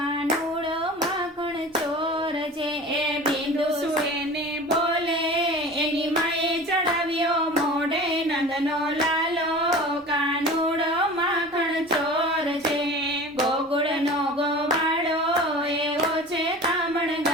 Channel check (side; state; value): both; normal; correlation 0.38